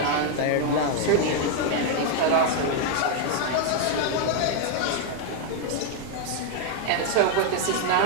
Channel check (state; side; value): different; both; correlation 0.01